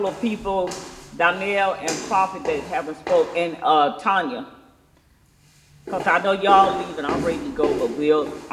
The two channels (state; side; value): identical; both; correlation 1.00